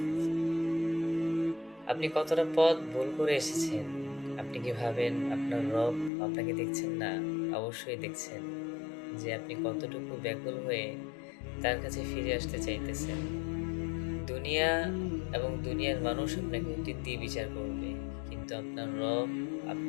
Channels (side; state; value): right; drops out; at 6.1 s